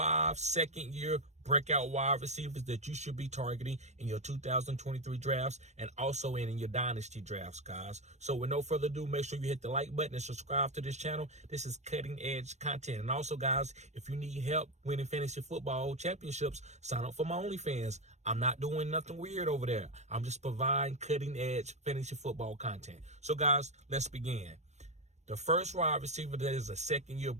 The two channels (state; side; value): late; left; 0.33 ms